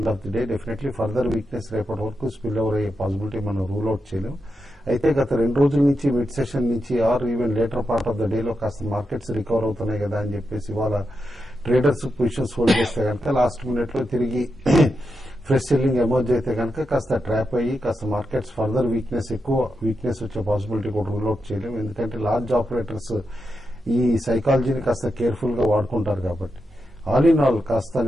of the day definitely further weakness రేపటి వరకు స్పిల్ ఓవర్ అయ్యే పాసిబిలిటీ మనం రూల్ అవుట్ చేయలేం. అయితే గత 2 రోజుల నుంచి మిడ్ సెషన్ నుంచి or even later part of the day లో కాస్త మార్కెట్స్ రికవర్ అవుతున్నాయి కదా అని చెప్పేసి ఇవాళ ట్రేడర్స్ పొజిషన్స్ హోల్డ్ చేస్తే కనుక లాస్ట్ మినిట్ లో తిరిగి ఫ్రెష్ సెల్లింగ్ ఎమర్జ్ అయితే కనుక కాస్త ట్రాప్ అయ్యి కాస్త మార్కెట్స్ ఫర్దర్ ఎక్కువ వీక్నెస్ వచ్చే పాసిబిలిటీ కూడా రూల్ అవుట్ చేయలేము. ఎందుకంటే లార్జ్ ఆపరేటర్స్ ఈ సైకాలజీని కాస్త కేర్ఫుల్ గా వాడుకుంటారు కాబట్టి. ఆల్ ఇన్ ఆల్ కాస్త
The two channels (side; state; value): both; normal; correlation 0.87